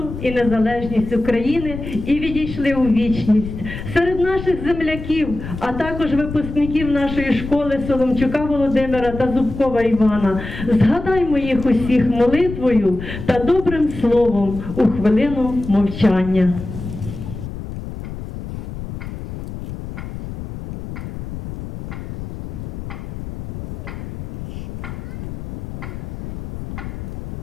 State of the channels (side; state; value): left; noise; rumble, 9 dB below the sound